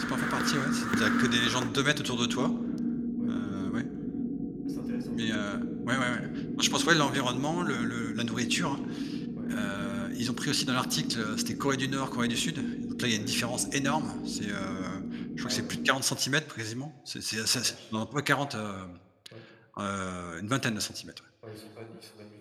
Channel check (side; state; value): both; identical; correlation 1.00